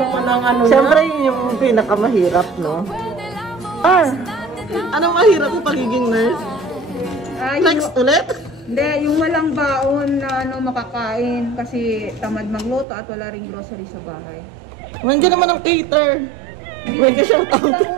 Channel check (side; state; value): left; drops out; at 12.9 s